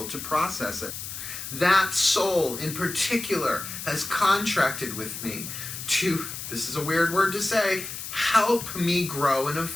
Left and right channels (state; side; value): noise; left; hiss, 8 dB below the sound